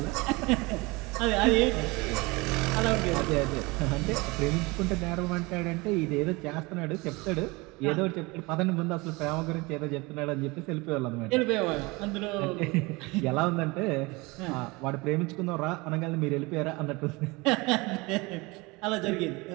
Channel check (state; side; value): quieter; left; 24.6 dB